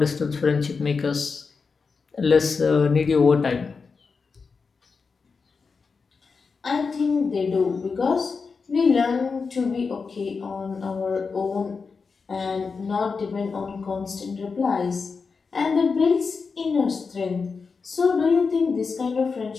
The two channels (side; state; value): right; quieter; 4.9 dB